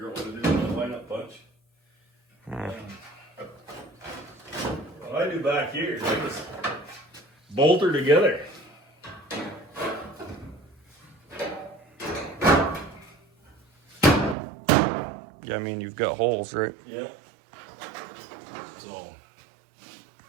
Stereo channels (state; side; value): drops out; left; at 14.4 s